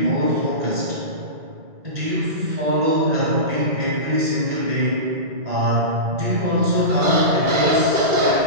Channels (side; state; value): left; late; 2.4 ms